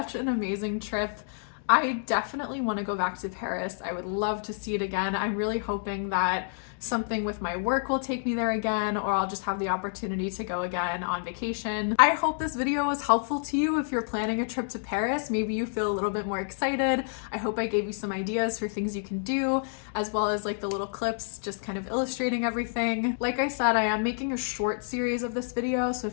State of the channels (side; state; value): right; silent; digital silence